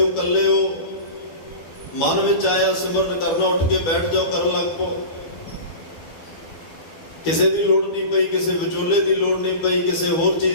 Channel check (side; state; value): right; late; 12 ms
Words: ਇਕੱਲੇ ਹੋ, ਮਨ ਵਿੱਚ ਆਇਆ ਸਿਮਰਨ ਕਰਨਾ, ਉੱਠ ਕੇ ਬੈਠ ਜਾਓ, ਕਰਨ ਲੱਗ ਪਓ। ਕਿਸੇ ਦੀ ਲੋੜ ਨਹੀਂ ਪਈ, ਕਿਸੇ ਵਿਚੋਲੇ ਦੀ ਲੋੜ ਨਹੀਂ ਪਈ, ਕਿਸੇ ਹੋਰ